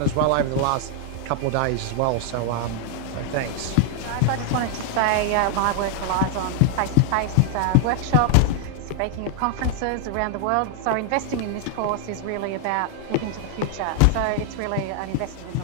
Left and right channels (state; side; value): different; both; correlation 0.00